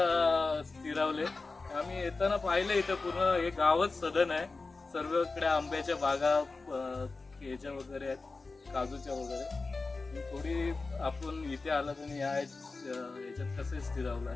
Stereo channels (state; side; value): quieter; right; 3.8 dB